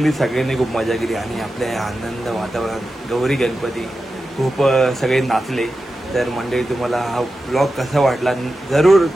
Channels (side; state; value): both; normal; correlation 0.92